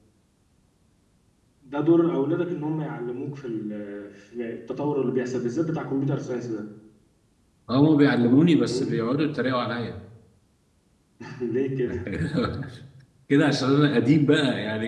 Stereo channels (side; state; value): both; identical; correlation 1.00